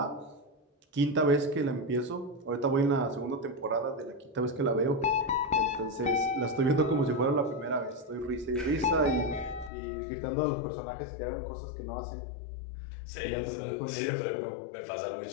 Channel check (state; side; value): drops out; right; at 9.7 s